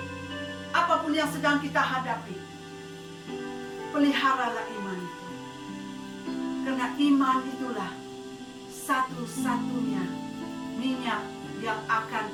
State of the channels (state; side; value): identical; both; correlation 1.00